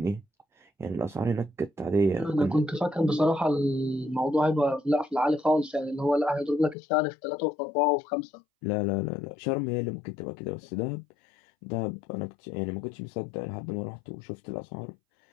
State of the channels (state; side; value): drops out; right; at 6.8 s